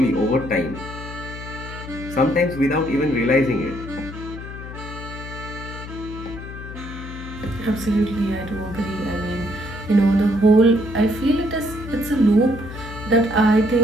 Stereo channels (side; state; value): left; noise; hum, 11 dB below the sound